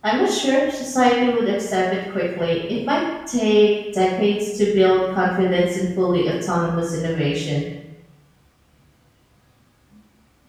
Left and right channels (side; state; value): both; identical; correlation 1.00